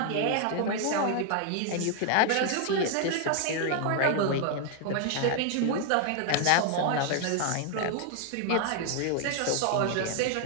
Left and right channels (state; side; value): different; both; correlation 0.00